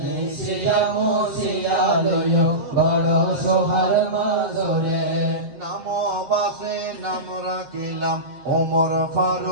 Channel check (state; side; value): late; left; 7.5 ms